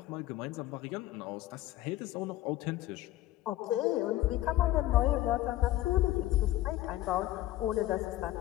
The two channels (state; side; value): quieter; right; 15.4 dB